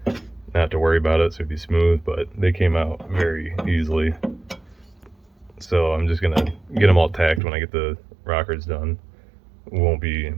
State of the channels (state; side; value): drops out; left; at 7.4 s